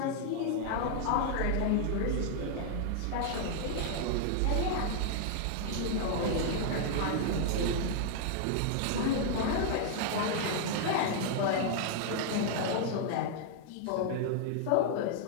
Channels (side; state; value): both; different; correlation -0.01